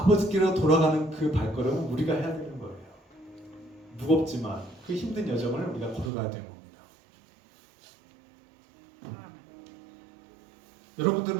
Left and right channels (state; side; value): drops out; left; at 6.1 s